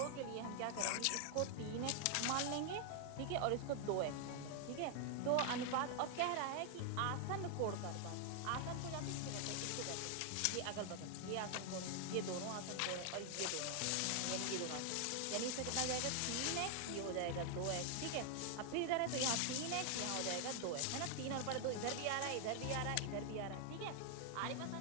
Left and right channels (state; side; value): different; both; correlation 0.00